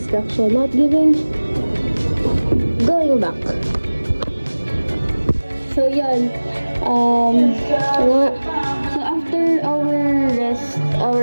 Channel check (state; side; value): inverted; both; correlation -1.00